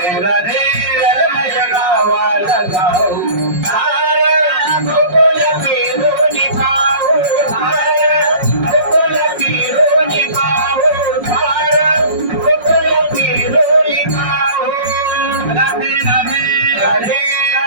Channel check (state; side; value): late; left; 5.5 ms